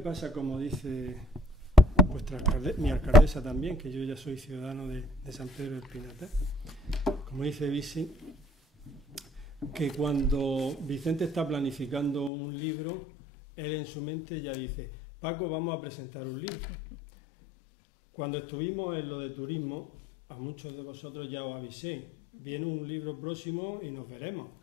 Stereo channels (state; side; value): drops out; right; at 12.3 s